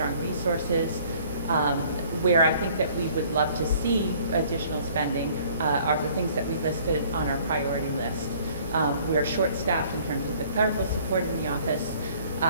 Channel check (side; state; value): both; inverted; correlation -0.56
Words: resources. Where I think that we would love to see additional spending are the things that we listed on our priority list. We are short-staffed in terms of the clerical support in the office.